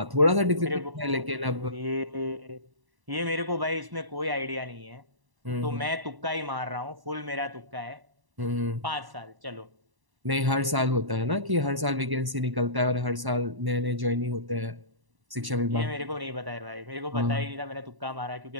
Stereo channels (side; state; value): left; late; 1.1 ms